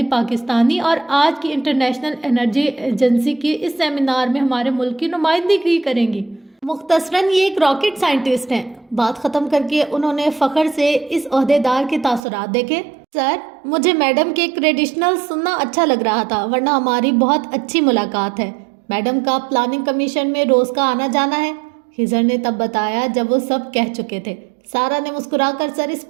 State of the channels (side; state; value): left; drops out; at 12.2 s